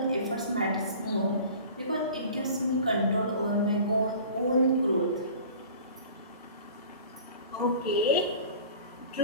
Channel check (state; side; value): inverted; both; correlation -0.42